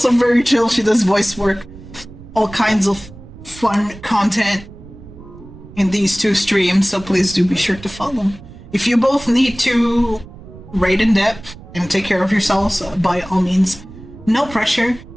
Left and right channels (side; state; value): right; noise; rumble, 18 dB below the sound